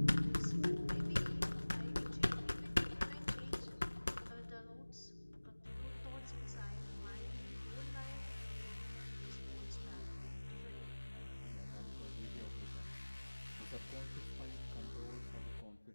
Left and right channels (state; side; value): inverted; both; correlation -1.00